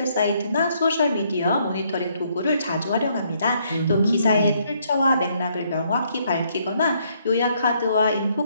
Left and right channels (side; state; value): both; inverted; correlation -0.70